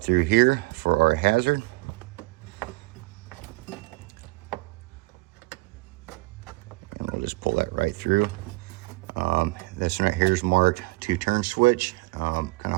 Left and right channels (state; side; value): quieter; left; 23.1 dB